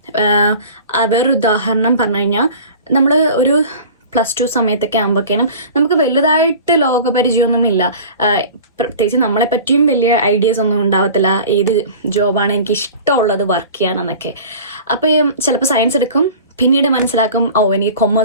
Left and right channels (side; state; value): both; inverted; correlation -0.40